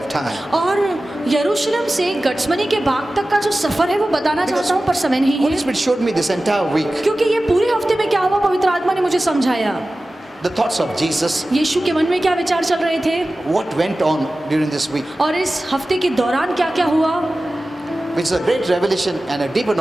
time. और यरूशलेम से गठसमनी के बाग तक का जो सफर है वो बताना चाहता हूँ, पर समय नहीं Holy है, Spirit showed me this entire week क्योंकि ये पूरे हफ्ते में क्या हुआ पवित्र आत्मा ने मुझे समझाया। the thoughts of Jesus, यीशु के मन में क्या विचार चल रहे थे what went on during this week, और इस हफ्ते के दौरान क्या क्या हुआ, which is a great revelation and a deeper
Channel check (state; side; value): normal; both; correlation 0.96